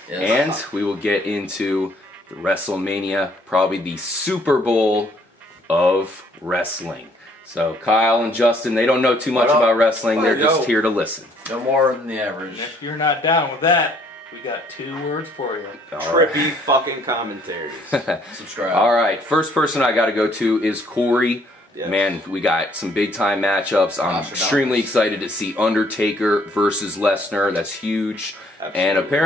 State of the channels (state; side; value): normal; both; correlation 0.63